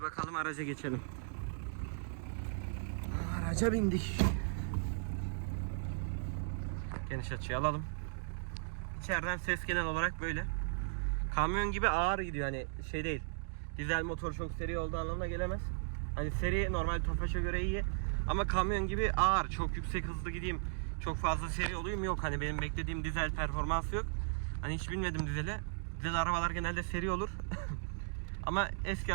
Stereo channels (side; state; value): left; silent; digital silence